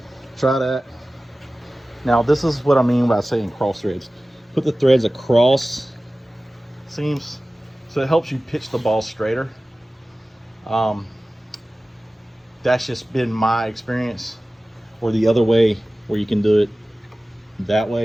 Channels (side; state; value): both; normal; correlation 0.97